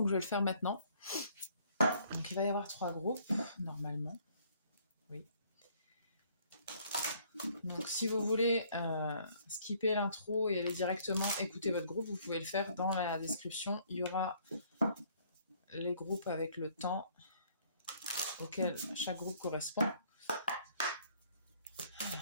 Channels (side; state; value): both; inverted; correlation -0.61